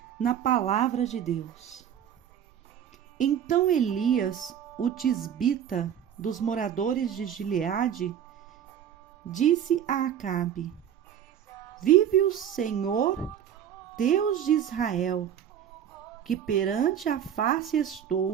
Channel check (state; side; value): quieter; left; 9.4 dB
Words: na palavra de Deus. Então Elias, o tisbita dos moradores de Gileade, disse a Acabe: Vive o Senhor, Deus de Israel, que perante a face